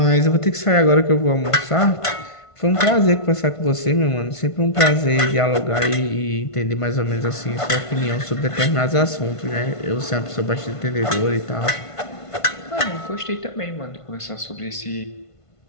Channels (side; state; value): right; late; 1.5 ms